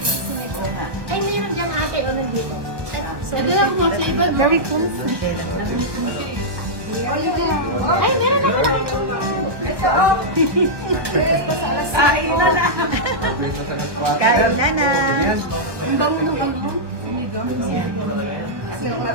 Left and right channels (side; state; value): left; late; 1.2 ms